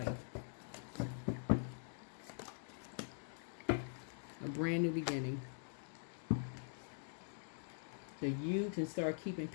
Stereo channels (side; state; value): right; silent; digital silence